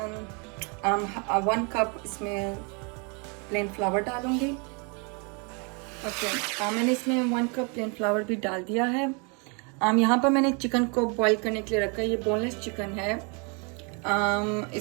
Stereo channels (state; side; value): quieter; left; 33.9 dB